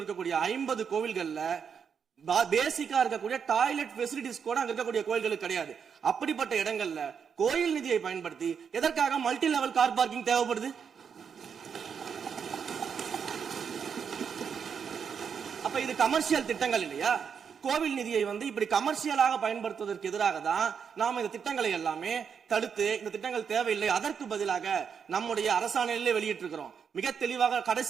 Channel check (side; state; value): left; quieter; 6.9 dB